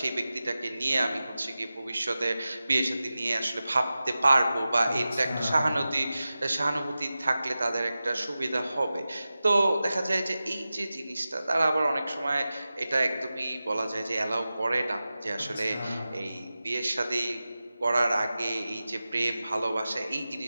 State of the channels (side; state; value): both; inverted; correlation -0.94